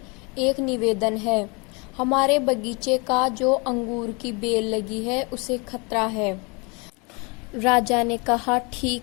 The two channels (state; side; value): quieter; right; 30.0 dB